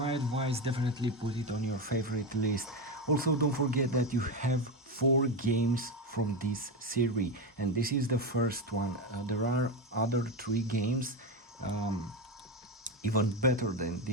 advice, definitely put it on your favorite list. Also, don't forget that you have 4 games from this series, and this is the first one. There are other 3 games, even better than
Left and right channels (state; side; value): normal; both; correlation 0.14